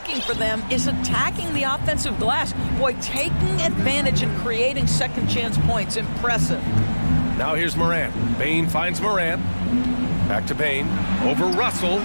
for them is attacking the offensive glass. Boy, taking advantage and creating second chance points. Impressive. Now here's Morant. Bane finds Morant. Back to Bane. Over Russell.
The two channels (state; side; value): inverted; both; correlation -1.00